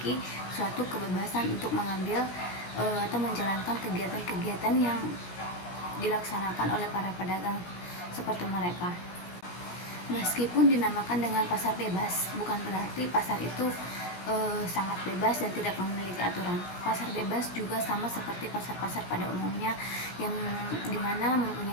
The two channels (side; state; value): right; late; 17 ms